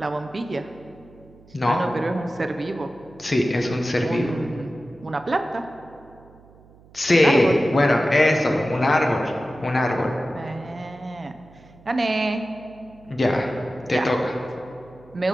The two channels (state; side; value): noise; right; hum, 25 dB below the sound